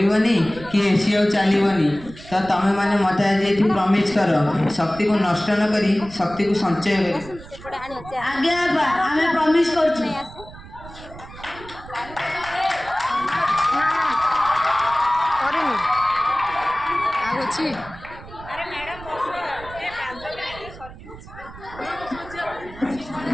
कि एसी आ चलीबनी तो तमे माने मते आज एठी प्रॉमिस कर शक्ति को नष्ट न करी शक्ति को संचय करी। आगे आबा हमें प्रॉमिस करछु करेनी आगो छी अरे मैडम बस ए 5 मिनिट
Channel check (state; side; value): noise; right; rumble, 17 dB below the sound